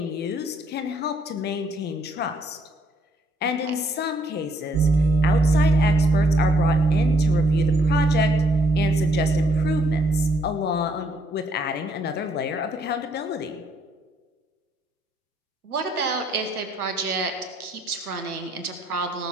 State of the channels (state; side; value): normal; both; correlation 0.69